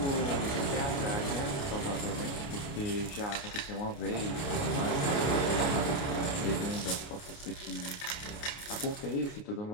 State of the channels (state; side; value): late; right; 29 ms